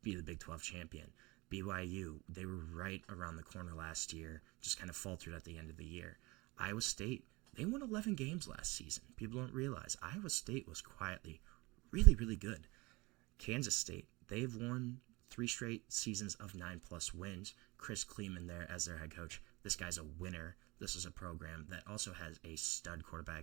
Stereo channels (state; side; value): quieter; left; 24.2 dB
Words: be the Big 12 champion. BYU, they were right around the corner last year, just kind of faltered at the end of the year. Iowa State, they won 11 games last season. People don't realize Iowa State was quietly really, really good. Kansas State, they've won 3 straight seasons of 9+ wins. Chris Kleeman there as their head coach. This guy's a winner. This is a program that also has a stud